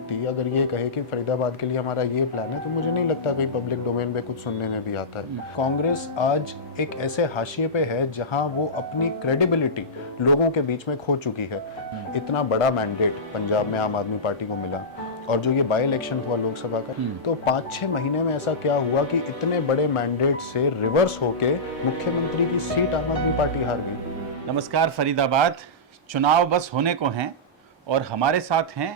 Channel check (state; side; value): normal; both; correlation -0.16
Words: अगर ये कहे कि फरीदाबाद के लिए हमारा ये प्लान है, तो मुझे नहीं लगता कोई पब्लिक डोमेन में कुछ सुनने में भी आता है। कांग्रेस आज एक ऐसे हाशिए पे है जहां वो अपनी क्रेडिबिलिटी लोगों के बीच में खो चुकी है। इतना बड़ा मैंडेट पंजाब में आम आदमी पार्टी को मिला, और जो ये बाई इलेक्शन हुआ लोकसभा का, तो 5-6 महीने में ऐसा क्या हुआ कि इतने बड़े मैंडेट से रिवर्स होके मुख्यमंत्री की सीट आम आदमी पार्टी हार गई। नमस्कार फरीदाबाद, चुनाव बस होने को हैं और हमारे साथ